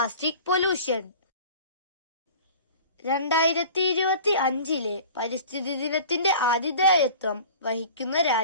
പൊല്യൂഷൻ. 2025 പരിസ്ഥിതി ദിനത്തിന്റെ ആതിഥേയത്വം വഹിക്കുന്ന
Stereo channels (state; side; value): inverted; both; correlation -0.42